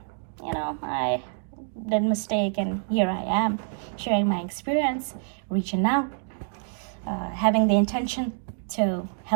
I did a mistake, and here I am sharing my experience, reaching out, having the intention to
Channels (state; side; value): silent; left; 60 dB below the other